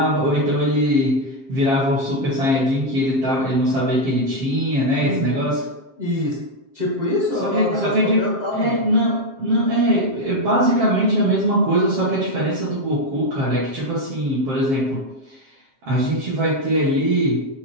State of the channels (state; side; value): late; left; 7.5 ms